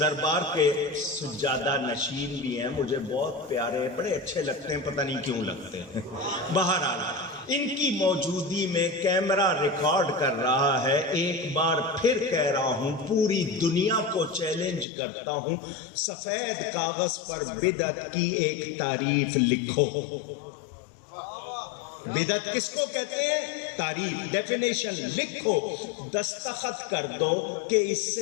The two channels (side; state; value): right; drops out; at 14.9 s